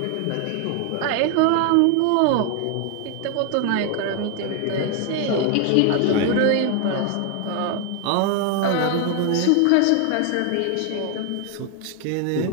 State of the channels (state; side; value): different; both; correlation 0.00